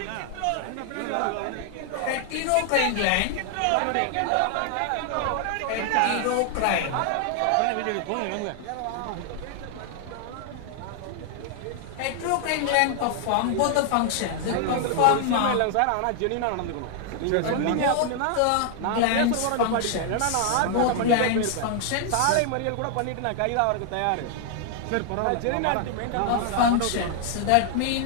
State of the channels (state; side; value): different; both; correlation 0.00